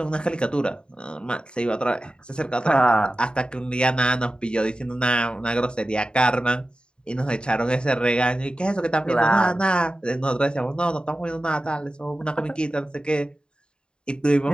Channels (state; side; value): late; right; 0.051 ms